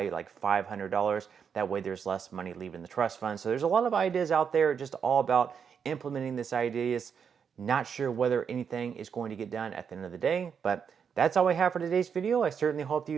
like $500. That way there's less money leaving the trust fund. So there's a lot of ideas out there, just all about implementing these ideas. Not sure whether anything is going to get done at the end of the day, but that's all I have for today's video. I certainly hope that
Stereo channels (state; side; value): quieter; left; 7.0 dB